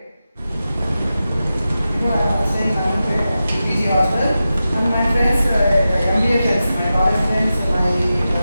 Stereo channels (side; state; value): both; inverted; correlation -0.92